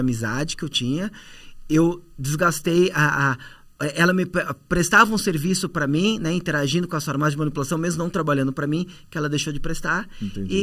que eu tinha, eu desgastei ela me prestava um serviço para mim, né, interagindo com as farmácias de manipulação, mesmo não trabalhando para mim, que ela deixou de prestar.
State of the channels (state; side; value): identical; both; correlation 1.00